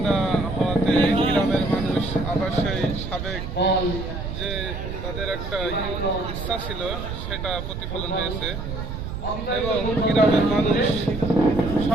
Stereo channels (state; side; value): noise; right; rumble, 6 dB below the sound